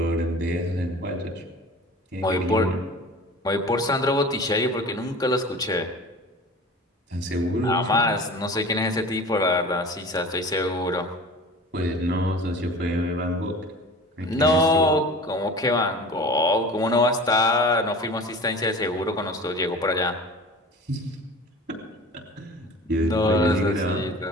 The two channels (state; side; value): normal; both; correlation 0.39